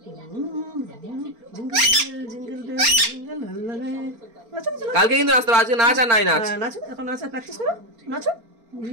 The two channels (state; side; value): late; left; 4.3 ms